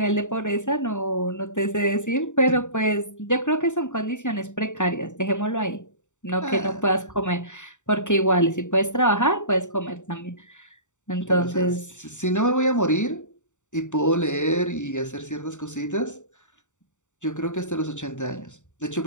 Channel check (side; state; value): right; late; 0.85 ms